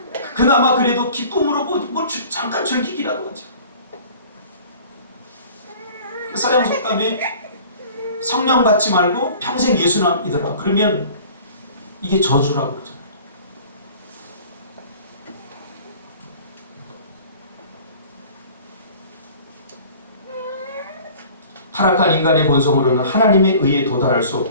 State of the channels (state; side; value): inverted; both; correlation -0.46